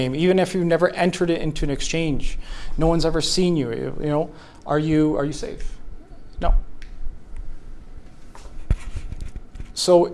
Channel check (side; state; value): both; identical; correlation 1.00